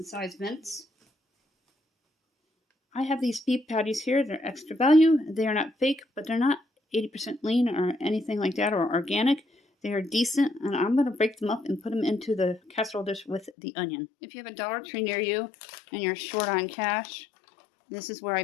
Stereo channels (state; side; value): drops out; right; at 13.5 s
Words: sized mince. I have these beef patties here. They're extra value. They are not fake, but they're not 80% lean or anything like that or organic. They are decent, and I'm going to break them up and put them into the casserole dish with the onion. If you have a Dollar Tree near you and you're short on cash, this is where I